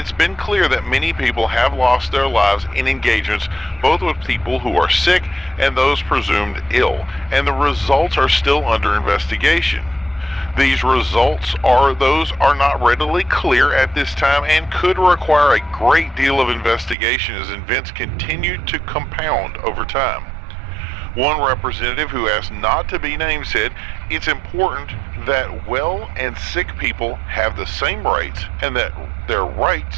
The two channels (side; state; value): left; drops out; at 16.9 s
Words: been clear that many people have lost their lives in engagements both with people who are sick and those presumed ill, and the results are still under investigation. These results are not readily clear at this time and could require a great deal of investigation as events continue to compound over time. One representative who asked not to be named said, "It's important that well and sick people have the same rights and that their